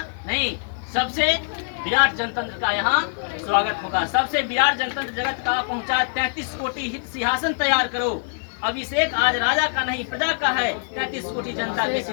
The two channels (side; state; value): right; silent; digital silence